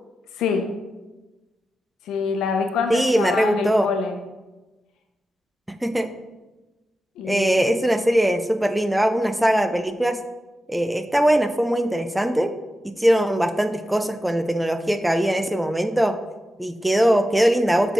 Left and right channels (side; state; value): both; normal; correlation 0.91